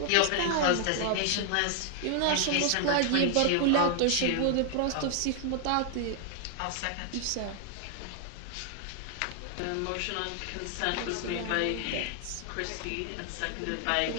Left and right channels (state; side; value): different; both; correlation 0.00